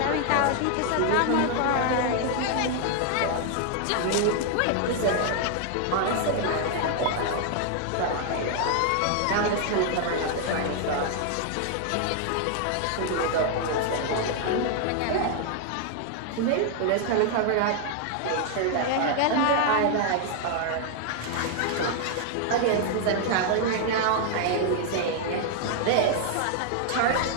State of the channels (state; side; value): different; both; correlation 0.00